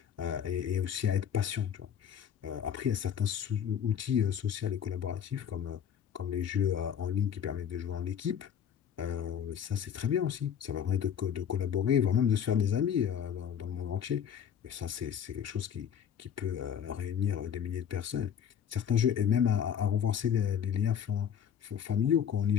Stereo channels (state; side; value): quieter; right; 8.6 dB